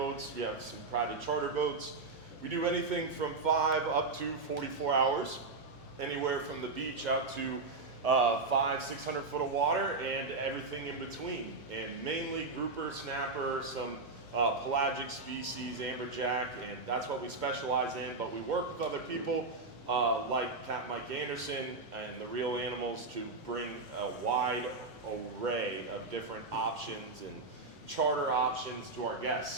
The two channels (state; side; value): quieter; left; 3.7 dB